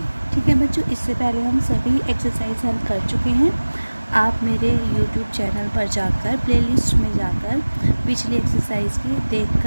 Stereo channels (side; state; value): both; inverted; correlation -1.00